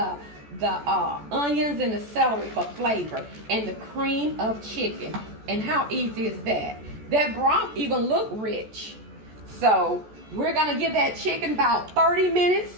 onions and the celery for flavor, and the cream of chicken. And how easy is that? That broth even look rich. So we're going to give that chicken about 30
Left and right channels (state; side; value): late; left; 14 ms